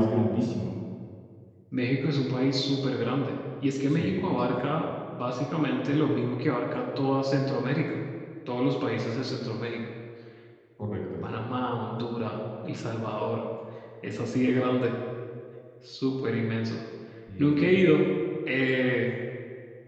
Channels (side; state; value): both; identical; correlation 1.00